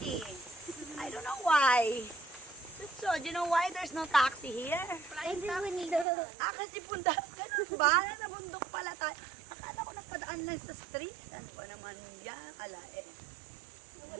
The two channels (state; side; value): drops out; left; at 6.1 s